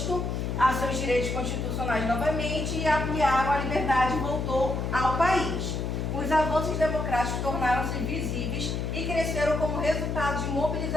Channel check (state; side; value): noise; left; hum, 2 dB below the sound